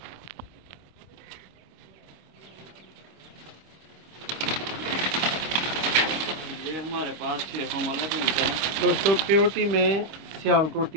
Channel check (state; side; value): late; left; 25 ms